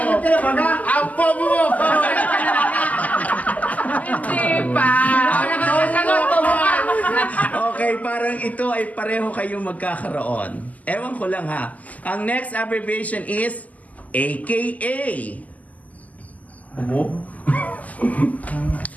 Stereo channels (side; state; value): right; late; 0.076 ms